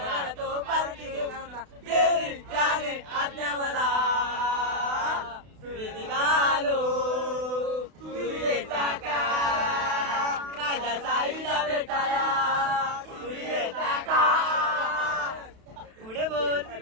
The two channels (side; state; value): left; late; 32 ms